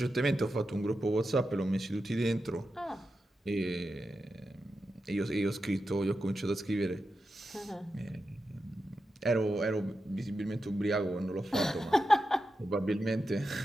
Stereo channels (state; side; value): normal; both; correlation 0.89